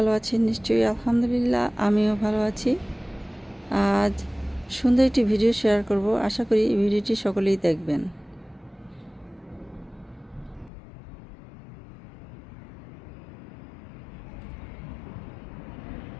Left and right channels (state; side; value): drops out; right; at 10.7 s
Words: আছেন নিশ্চয়ই। আলহামদুলিল্লাহ আমিও ভালো আছি। আজ সুন্দর একটি ভিডিও শেয়ার করব। আশা করি এই ভিডিওটি সকলেই দেখবেন।